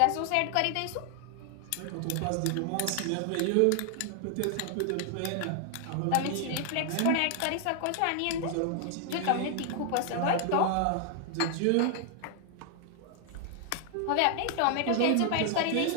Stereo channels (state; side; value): different; both; correlation 0.00